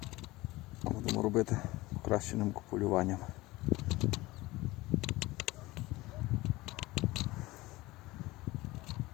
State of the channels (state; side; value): quieter; right; 19.9 dB